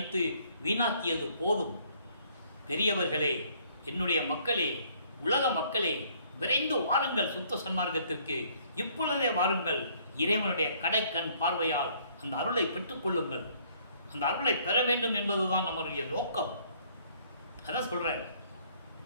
வீணாக்கியது போதும். பெரியவர்களே, என்னுடைய மக்களே, உலக மக்களே, விரைந்து வாருங்கள் சுத்த சன்மார்க்கத்திற்கு. இப்பொழுதே வாருங்கள். இறைவனுடைய கடைக்கண் பார்வையால் அந்த அருளை பெற்றுக் கொள்ளுங்கள். அந்த அருளை பெற வேண்டும் என்பதுதான் நம்முடைய நோக்கம். அதான் சொல்றேன்,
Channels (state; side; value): inverted; both; correlation -0.62